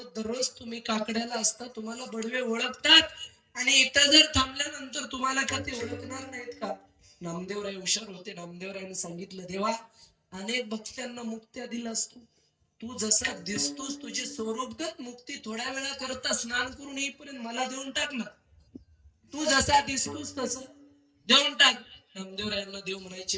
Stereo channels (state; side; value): identical; both; correlation 1.00